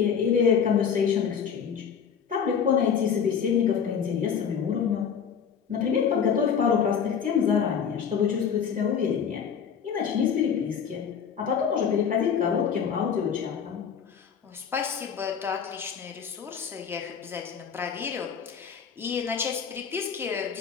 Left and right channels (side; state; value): right; quieter; 7.2 dB